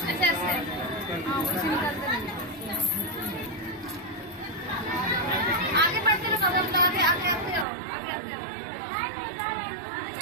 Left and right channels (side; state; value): left; drops out; at 7.7 s